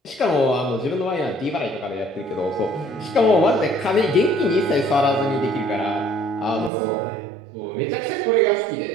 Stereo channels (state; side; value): drops out; left; at 6.7 s